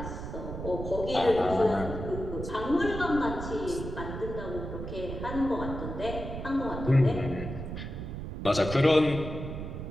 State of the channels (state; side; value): noise; right; rumble, 7 dB below the sound